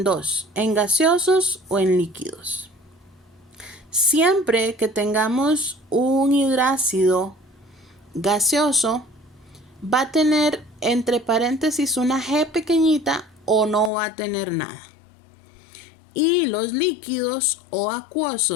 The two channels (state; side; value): drops out; right; at 13.9 s